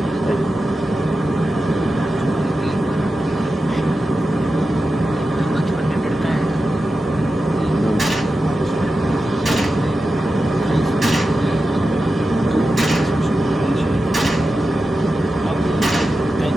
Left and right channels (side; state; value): both; normal; correlation 0.92